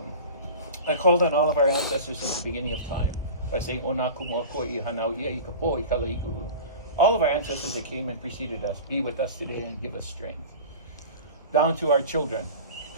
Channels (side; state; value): both; inverted; correlation -0.35